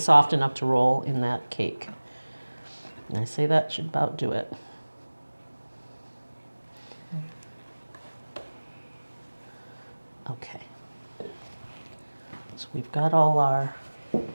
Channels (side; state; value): both; inverted; correlation -1.00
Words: enough to roll in that cake. And I say that should about do it. Okay. So we've got all our